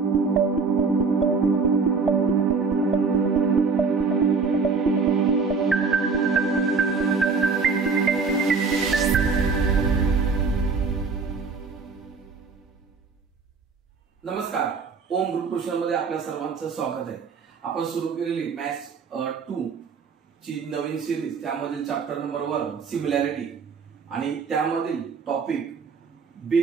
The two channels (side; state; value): left; quieter; 4.9 dB